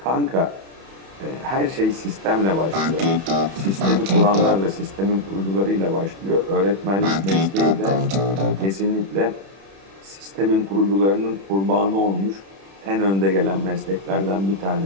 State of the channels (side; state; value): left; late; 31 ms